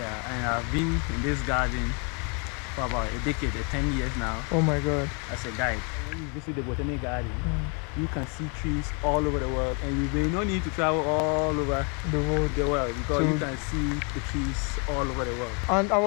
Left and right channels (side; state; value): right; quieter; 35.9 dB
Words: and I've been in this garden for about a decade, 10 years now. Oh my God. As a guide. When you visit the botanic garden, you can see trees all over the world, and you may not need to travel all over the world because you can see the trees all over the world.